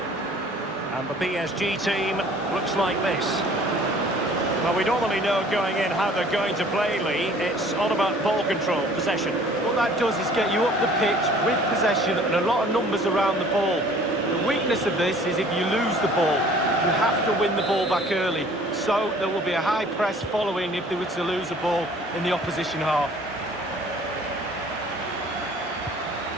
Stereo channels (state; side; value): normal; both; correlation 0.52